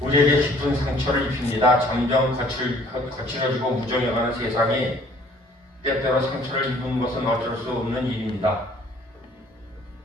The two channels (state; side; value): normal; both; correlation 0.57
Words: 깊은 상처를 입힙니다. 점점 거칠어지고 무정해가는 세상이 때때로 상처를 입은 것은 어쩔 수 없는 일입니다.